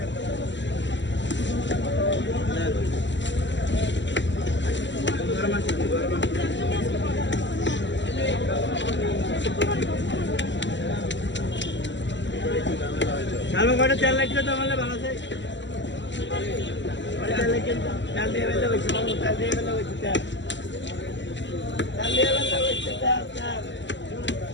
চালু করে তেল লাগলে তো আমাদের ভালো আছে তেল লাগলে তেল দিয়ে বেলা হয়েছে তেল দিয়ে বেলা হয়েছে তেল দিয়ে বেলা হয়েছে তেল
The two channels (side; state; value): right; late; 0.53 ms